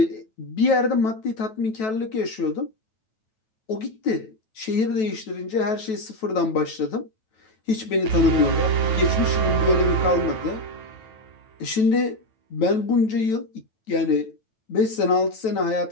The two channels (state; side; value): late; right; 9.2 ms